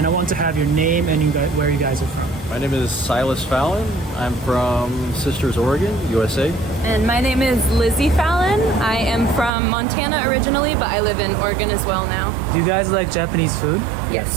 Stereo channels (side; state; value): left; drops out; at 9.5 s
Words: I want to have your name and where you guys are from. My name is Silas Fallon. I'm from Sisters, Oregon, USA. And my name is Lizzie Fallon. I am from Montana originally, but I live in Oregon as well now. Do you guys like Japanese food?